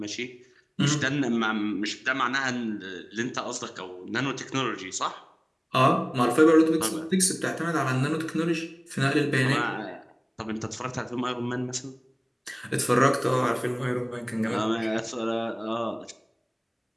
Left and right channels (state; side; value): identical; both; correlation 1.00